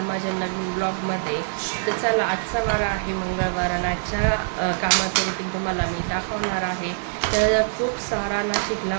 माझ्या नवीन ब्लॉगमध्ये. तर चला, आजचा वार आहे मंगळवार आणि आजच्या कामाचं रुटीन तुम्हाला मी दाखवणार आहे. तर खूप सारा नाशिकला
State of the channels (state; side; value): silent; left; 63 dB below the other